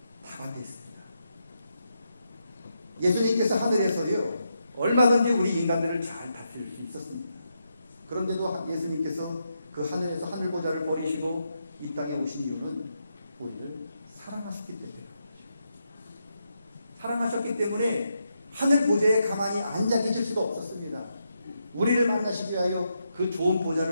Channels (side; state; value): both; inverted; correlation -0.82